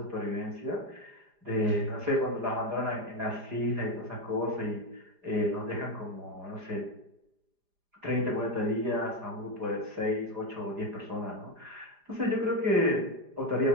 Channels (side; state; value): left; late; 4.9 ms